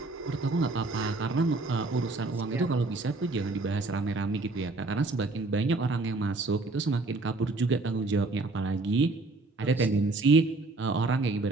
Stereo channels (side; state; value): left; quieter; 3.3 dB